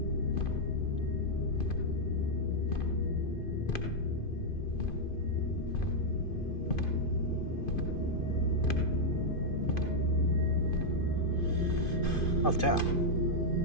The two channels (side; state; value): right; late; 2.5 ms